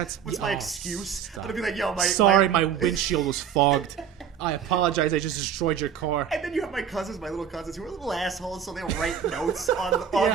What's my excuse? I'm going to be like, yo, my windshield was fogged. I apologize, I just destroyed your car. And then you have my little cousins, who are little assholes, so they'll write notes on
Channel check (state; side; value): quieter; left; 8.1 dB